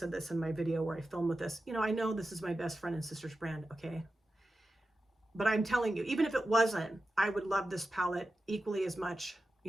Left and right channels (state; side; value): normal; both; correlation 0.92